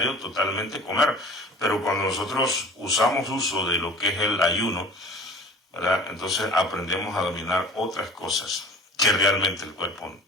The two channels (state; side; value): normal; both; correlation 0.43